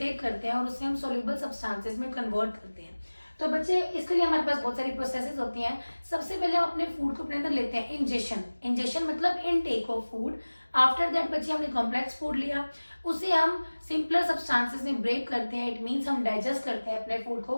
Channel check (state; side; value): inverted; both; correlation -1.00